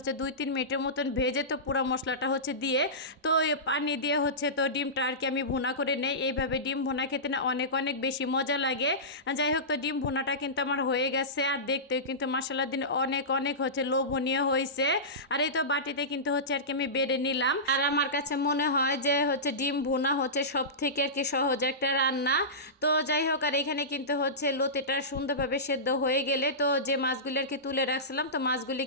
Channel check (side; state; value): both; normal; correlation -0.18